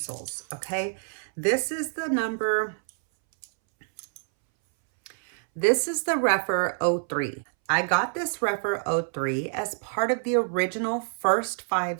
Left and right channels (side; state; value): left; silent; 60 dB below the other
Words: okay, this is the REPHR 03. I got this REPHR 03 as part of the original first